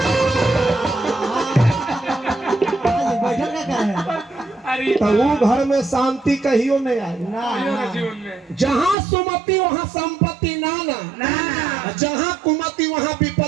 बैठल का है अरे तो वो घर में शांति कहियो नहीं आई जीवन में जहाँ सुमति वहाँ संपत्ति नाना जहाँ कुमति वहाँ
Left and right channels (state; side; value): drops out; left; at 9.0 s